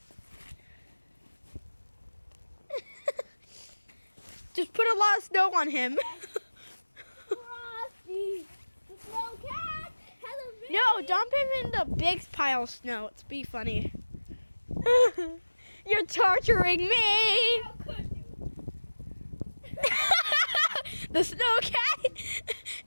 Just put a lot of snow on him. Frosty the snow cat has a baby. No, dump him in the big pile of snow. It's be funny. You're torturing me. How could you? The snow cat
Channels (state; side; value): inverted; both; correlation -1.00